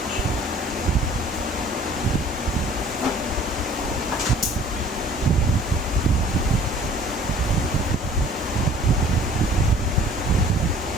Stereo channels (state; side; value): normal; both; correlation 0.51